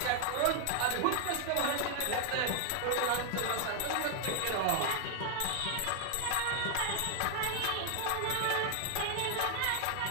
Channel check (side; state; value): both; different; correlation 0.00